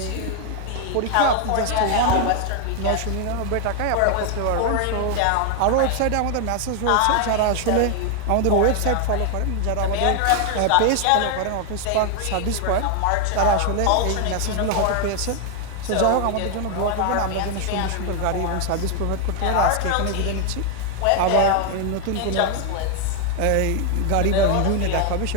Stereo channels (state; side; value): different; both; correlation 0.00